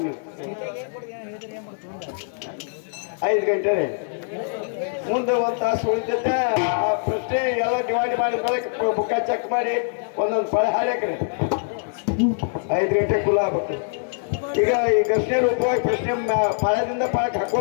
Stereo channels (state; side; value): silent; right; digital silence